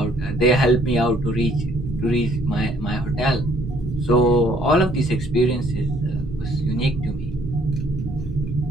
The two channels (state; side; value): normal; both; correlation 0.62